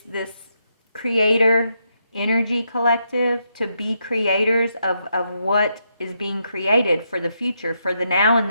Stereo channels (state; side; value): inverted; both; correlation -0.80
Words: creator energy collective to be creators of what is being created for the future, for the now and